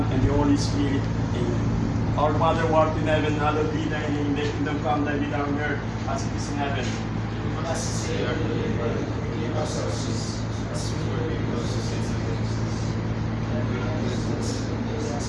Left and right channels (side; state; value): both; identical; correlation 1.00